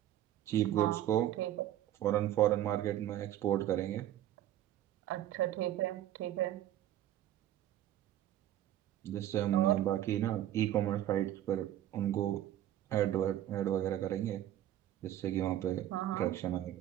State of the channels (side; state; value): left; quieter; 12.4 dB